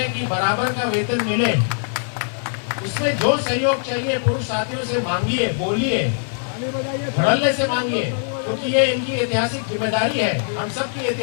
कि बराबर का वेतन मिले। उसमें जो सहयोग चाहिए पुरुष साथियों से मांगिए, बोलिए, धड़ल्ले से मांगिए, क्योंकि ये इनकी ऐतिहासिक जिम्मेदारी है, हम सबकी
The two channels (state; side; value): silent; right; digital silence